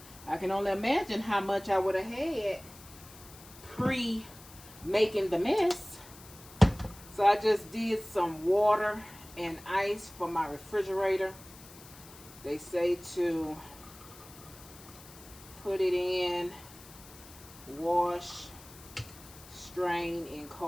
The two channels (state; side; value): noise; left; hiss, 19 dB below the sound